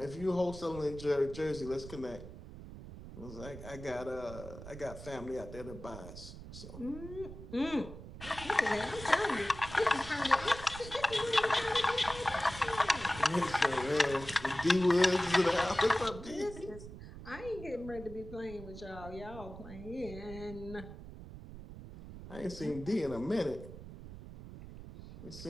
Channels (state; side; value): noise; right; rumble, 13 dB below the sound